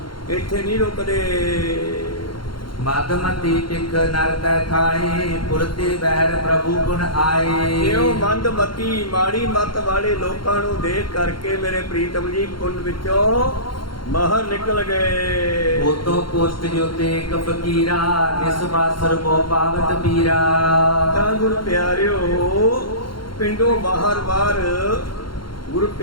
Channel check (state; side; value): late; right; 0.73 ms